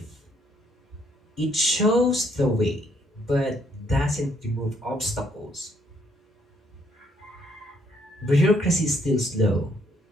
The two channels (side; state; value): both; normal; correlation 0.69